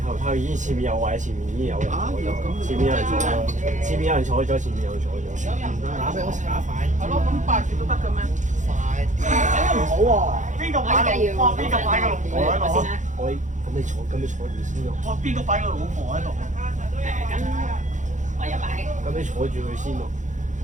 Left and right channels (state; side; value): late; left; 0.36 ms